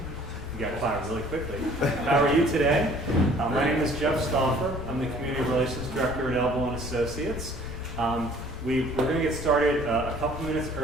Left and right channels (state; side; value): noise; left; rumble, 11 dB below the sound